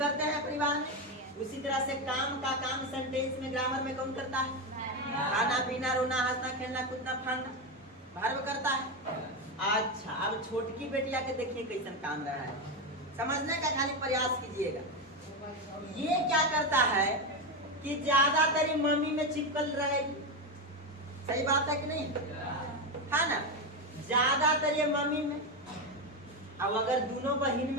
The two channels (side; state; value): both; normal; correlation 0.12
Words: हैं परिवार में, उसी तरह से काम का काम सेंटेंस में ग्रामर में कौन करता है? खाना पीना, रोना, हंसना, खेलना, कूदना, फाड़ना भर्व करता है। अच्छा, अब छोटकी बेटिया के देखिए कैसन काम रहा है, समझने का खाली प्रयास कीजिएगा। ये क्या करता है कि ज्यादातर मम्मी में चिपकल रहेगी। सही बात है कि नहीं? है ना, ज्यादातर ये मम्मी में। अब अगर दोनों बहन